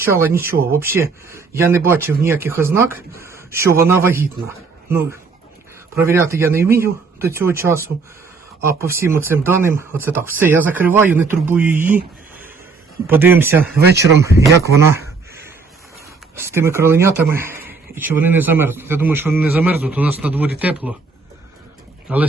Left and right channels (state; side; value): quieter; left; 4.5 dB